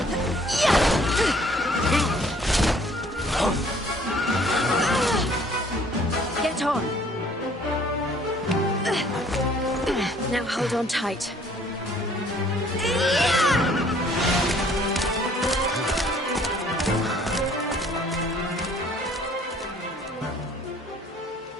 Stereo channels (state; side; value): normal; both; correlation 0.58